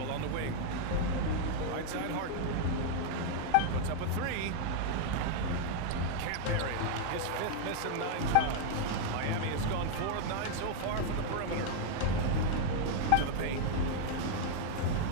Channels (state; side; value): different; both; correlation 0.00